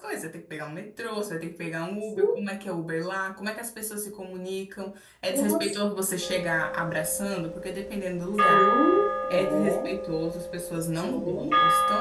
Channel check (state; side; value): identical; both; correlation 1.00